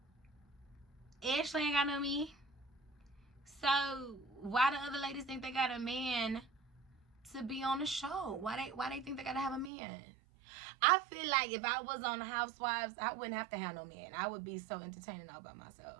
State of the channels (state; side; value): drops out; left; at 9.7 s